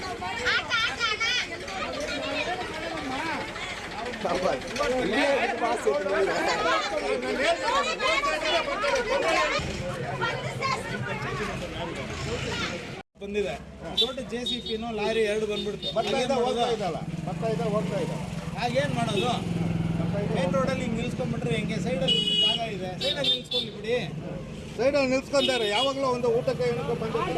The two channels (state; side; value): identical; both; correlation 1.00